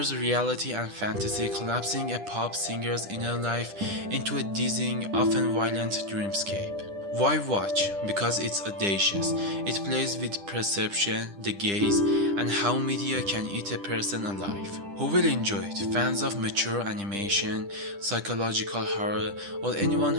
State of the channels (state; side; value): late; left; 10 ms